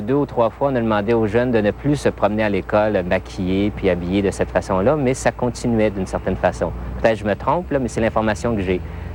ou 3 fois, on a demandé aux jeunes de ne plus se promener à l'école maquillés puis habillés de cette façon-là, mais ça continuait d'une certaine façon. Peut-être que je me trompe, là, mais c'est l'information que j'ai.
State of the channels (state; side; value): identical; both; correlation 1.00